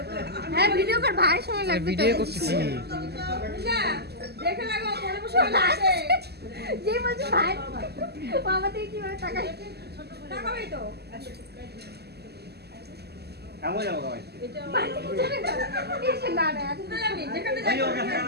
হ্যাঁ ভিডিও কর ভাই সময় লাগবে ভিডিও করতেছি দেখে রাখো মনে বসে আছে যে বলছে ভাই বাবা থেকে কি করে টাকা টাকাই তো কেমন যাবো ভাই এসে না না আমি যেখানে যাই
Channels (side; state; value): left; late; 0.47 ms